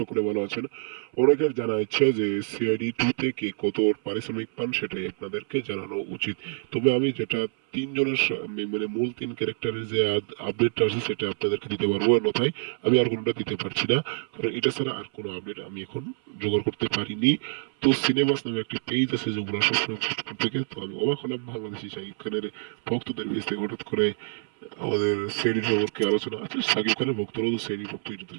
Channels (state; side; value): silent; left; 60 dB below the other